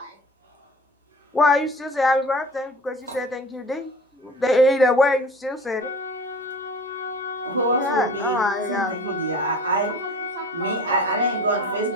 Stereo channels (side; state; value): both; normal; correlation 0.40